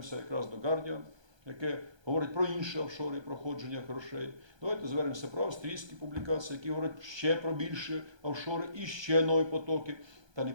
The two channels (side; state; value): left; late; 1.3 ms